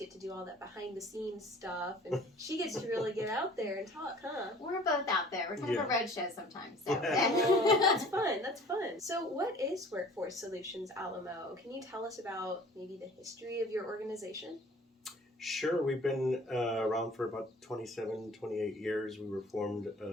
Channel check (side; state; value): both; normal; correlation 0.49